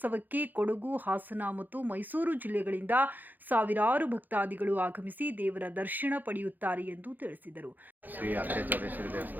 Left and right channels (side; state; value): left; late; 0.086 ms